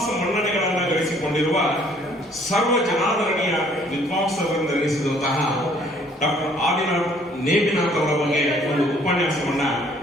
ಮನ್ನಣೆಗಳನ್ನು ಗಳಿಸಿಕೊಂಡಿರುವ ಸರ್ವ ಜನಾದರಣೀಯ ವಿದ್ವಾಂಸರೆಂದೆನಿಸಿದಂತಹ ಡಾಕ್ಟರ್ ಆದಿನಾಥ್ ನೇಮಿನಾಥ್ ಅವರ ಬಗ್ಗೆ ಒಂದು ಉಪನ್ಯಾಸವನ್ನ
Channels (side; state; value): both; normal; correlation 0.60